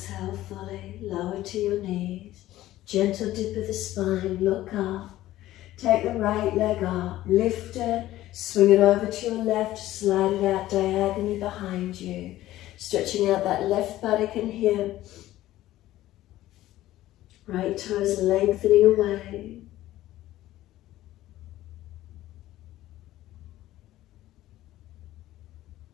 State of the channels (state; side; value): quieter; right; 15.0 dB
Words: fully, lower to your knees. Gentle dip of the spine, look up. Take the right leg up, lift it, swing it over to your left, slide it out diagonally behind you. Stretching out that left buttock and hip. Right toes lengthening away.